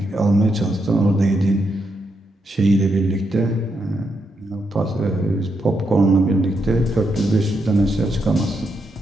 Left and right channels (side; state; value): both; normal; correlation 0.81